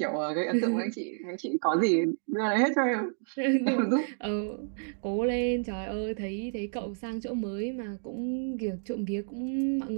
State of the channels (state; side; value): silent; left; digital silence